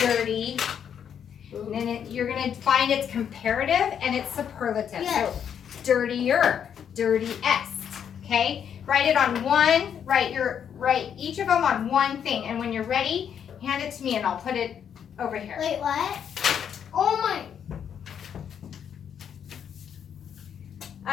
And then you're gonna find its comparative and its superlative. Yes. So dirtier, dirtiest. Okay? Write it on one, write each of them on one thing. And when you're ready, hand it to me and I'll put it over here. Wait, what? Oh my.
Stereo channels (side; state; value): right; quieter; 8.3 dB